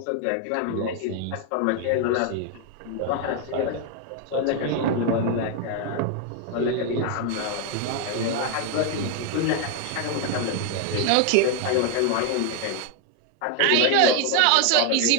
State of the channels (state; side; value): different; both; correlation 0.01